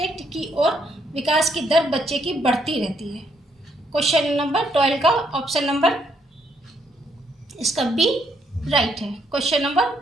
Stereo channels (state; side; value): normal; both; correlation 0.73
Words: की ओर विकास की दर बच्चे की बढ़ती रहती है। क्वेश्चन नंबर 12 का ऑप्शन नंबर इसका बी राइट है। क्वेश्चन नंबर